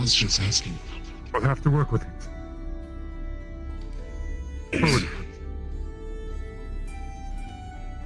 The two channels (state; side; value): identical; both; correlation 1.00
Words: just asking. We'll have to work with it. Forward.